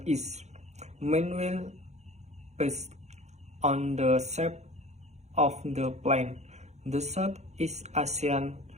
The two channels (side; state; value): left; late; 0.33 ms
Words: east. Meanwhile, based on the shape of the plain, the Southeast Asian